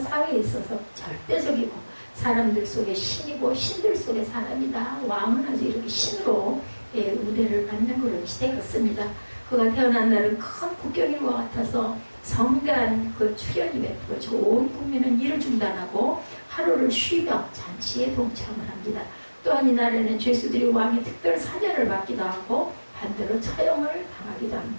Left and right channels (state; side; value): inverted; both; correlation -1.00